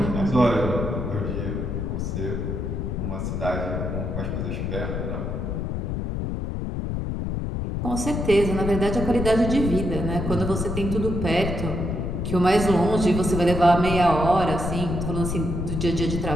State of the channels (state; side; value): noise; left; rumble, 2 dB below the sound